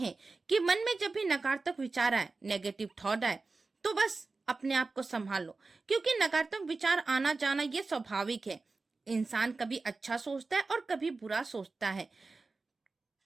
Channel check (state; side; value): quieter; left; 3.8 dB